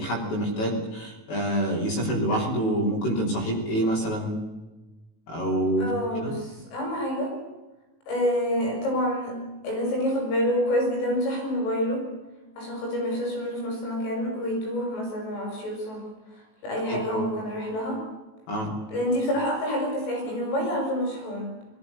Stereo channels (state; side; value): late; right; 18 ms